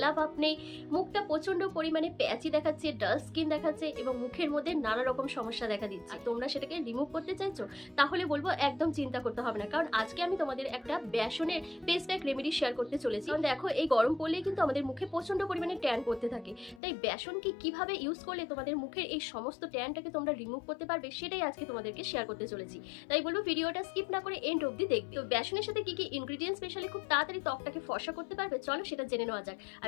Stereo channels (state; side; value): drops out; right; at 16.8 s